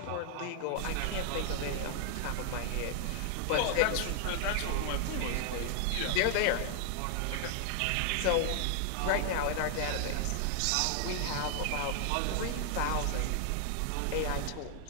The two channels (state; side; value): different; both; correlation 0.00